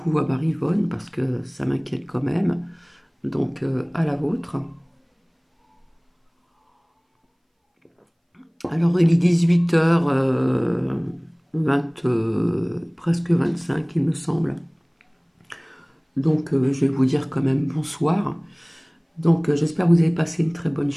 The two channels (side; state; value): both; identical; correlation 1.00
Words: à Marivonne parce que ça m'inquiète quand même. Donc, à la vôtre. Alors, il est 18h, presque 25, il me semble. Donc, je vais vous dire quand même bonsoir. Donc, j'espère que vous avez passé une très bonne